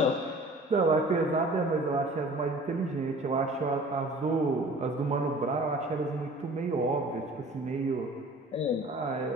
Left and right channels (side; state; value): both; normal; correlation 0.46